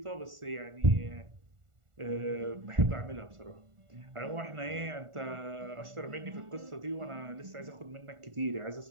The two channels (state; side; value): late; left; 1.4 ms